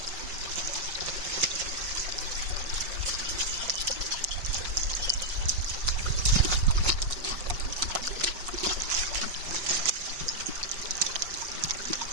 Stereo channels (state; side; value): late; left; 5.5 ms